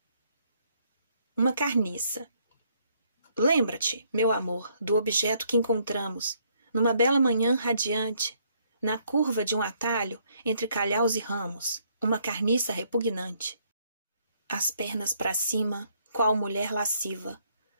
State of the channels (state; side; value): inverted; both; correlation -0.69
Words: Uma carniça. Lembra-te, meu amor, do objeto que encontramos, numa bela manhã radiante, na curva de um atalho entre calhaus e ramos, uma carniça repugnante. As pernas para cima, qual mulher lasciva,